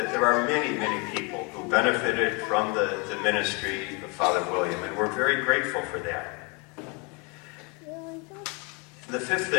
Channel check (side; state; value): right; quieter; 31.3 dB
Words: there are many, many people who benefited from the ministry of Father William, and we're very grateful for that. The fifth